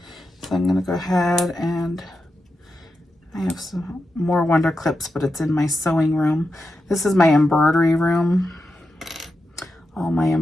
So I'm gonna go ahead and I have some more Wonder Clips, but it's in my sewing room. This is my embroidery room. All my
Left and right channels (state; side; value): normal; both; correlation 0.89